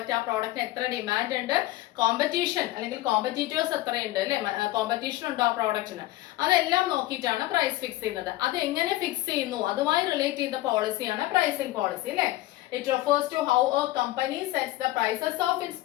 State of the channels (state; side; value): quieter; right; 17.2 dB